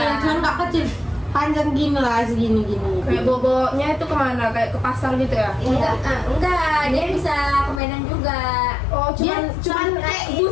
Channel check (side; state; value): right; drops out; at 7.8 s